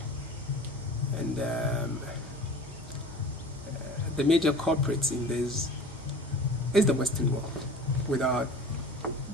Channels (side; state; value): both; normal; correlation 0.40